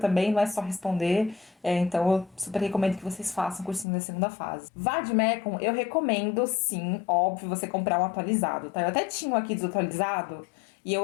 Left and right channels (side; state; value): right; drops out; at 3.9 s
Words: não é só responder, então eu super recomendo que vocês façam o cursinho da segunda fase. Vademecum, eu recomendo sim, óbvio, você comprar um atualizado, tá? Eu até tinha um aqui desatualizado, e